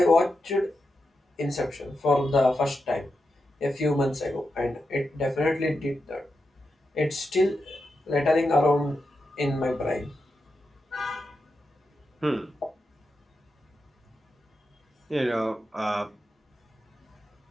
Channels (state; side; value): normal; both; correlation 0.88